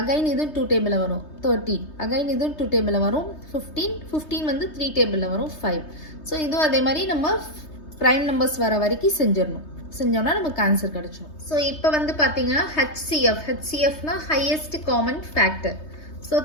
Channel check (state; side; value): late; right; 3.2 ms